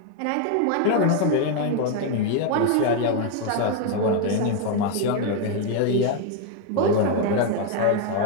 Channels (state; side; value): different; both; correlation 0.01